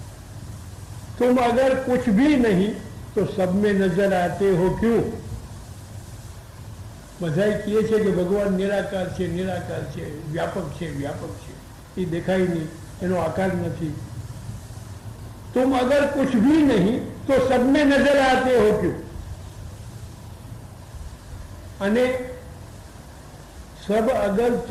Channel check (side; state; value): both; identical; correlation 1.00